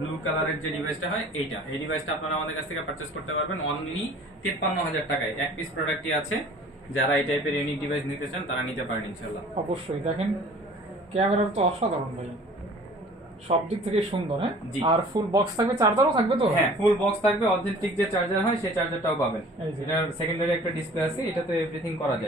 কালারের যে ডিভাইসটা হয় এইটা, এই ডিভাইসটা আপনারা আমাদের কাছ থেকে পারচেজ করতে পারবেন অনলি 53,000 টাকায়। এক পিস প্রোডাক্টই আছে। যারা এই টাইপের ইউনিক ডিভাইস নিতে চান তারা নিতে পারেন ইনশাআল্লাহ। অবশ্যই দেখেন ক্যামেরা তো অসাধারণ ভাই, সব দিক থেকে সুন্দর। হ্যাঁ, আর ফুল বক্স থাকবে, চার্জারও থাকবে তো? হ্যাঁ, ফুল বক্স থাকবে, অথেন্টিক যে চার্জার হয় সেই চার্জারটাও পাবেন। এটার সেকেন্ডারি একটা ডিসপ্লে আছে, এটাতে এভরিথিং করা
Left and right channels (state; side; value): normal; both; correlation 0.48